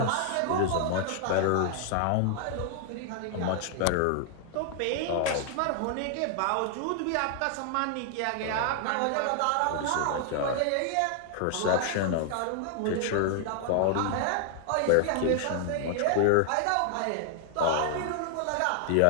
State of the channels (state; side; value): different; both; correlation 0.00